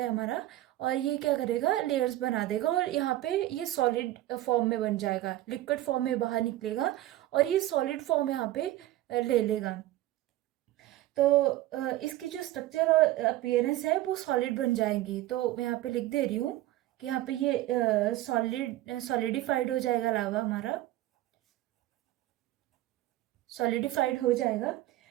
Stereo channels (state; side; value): quieter; left; 15.3 dB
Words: है हमारा, और ये क्या करेगा, लेयर्स बना देगा, और यहाँ पे ये सॉलिड फॉर्म में बन जाएगा, लिक्विड फॉर्म में बाहर निकलेगा, और ये सॉलिड फॉर्म यहाँ पे ले लेगा। तो इसकी जो स्ट्रक्चर और अपीयरेंस है वो सॉलिड बन जाएंगी। तो मैं यहाँ पे लिख दे रही हूँ कि यहाँ पे ये सॉलिडिफाइड हो जाएगा, लावा हमारा सॉलिडिफाइड हो जाएगा।